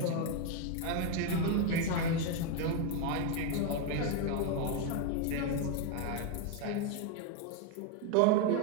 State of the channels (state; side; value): different; both; correlation 0.01